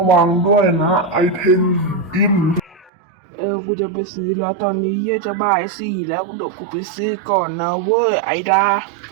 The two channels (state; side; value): drops out; left; at 2.9 s